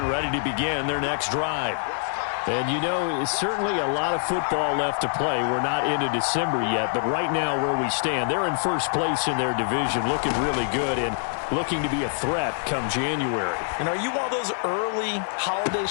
ready to begin their next drive. And it's certainly a lot of football left to play. We're not into December yet, but right now where we stand, they're in first place in their division, looking really good and looking to be a threat come January. And are you one of those early holiday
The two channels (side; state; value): right; silent; digital silence